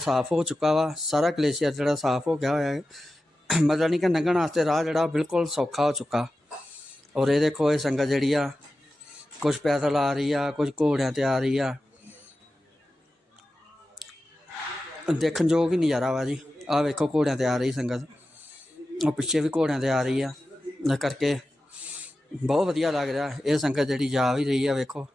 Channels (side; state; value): both; normal; correlation 0.93